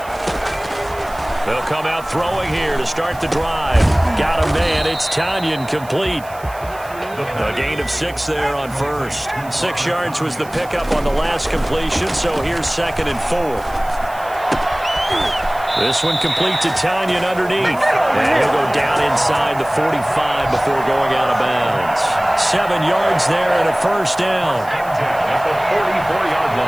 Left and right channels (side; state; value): right; noise; hiss, 21 dB below the sound